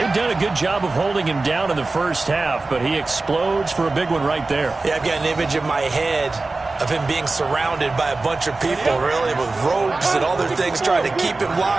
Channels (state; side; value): quieter; left; 3.5 dB